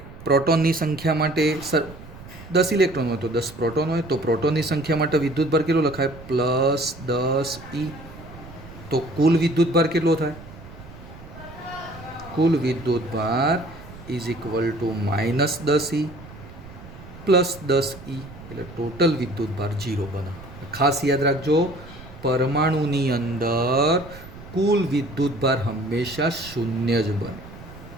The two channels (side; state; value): right; noise; rumble, 17 dB below the sound